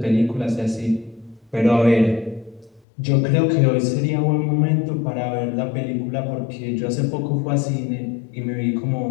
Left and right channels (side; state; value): right; drops out; at 2.8 s